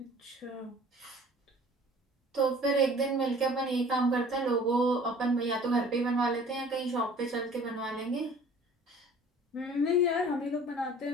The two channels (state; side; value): normal; both; correlation 0.49